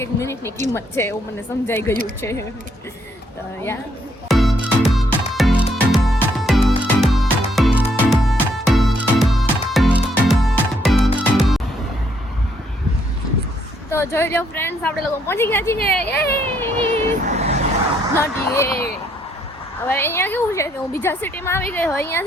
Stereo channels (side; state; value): both; normal; correlation 0.71